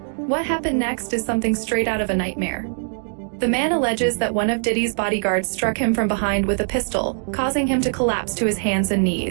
What happened next is something straight out of a nightmare. The man alleges that one of Diddy's bodyguards struck him from behind with a pistol, causing him to collapse to his hands and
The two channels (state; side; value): silent; left; digital silence